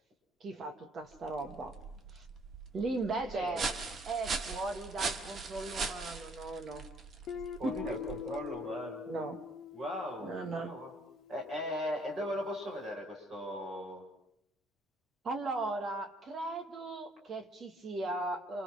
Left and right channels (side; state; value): both; normal; correlation 0.62